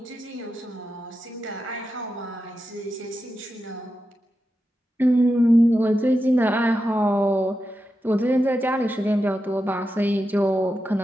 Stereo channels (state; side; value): normal; both; correlation 0.89